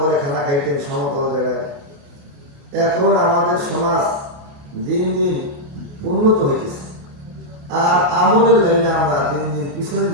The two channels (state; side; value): late; left; 28 ms